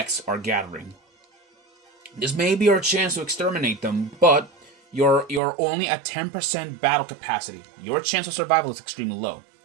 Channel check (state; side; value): drops out; left; at 5.4 s